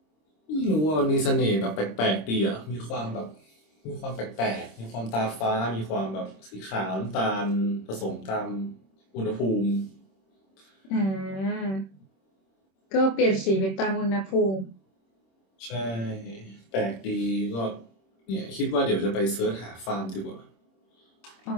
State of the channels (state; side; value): late; right; 26 ms